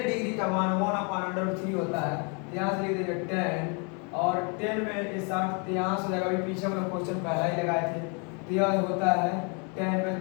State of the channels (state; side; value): quieter; right; 35.4 dB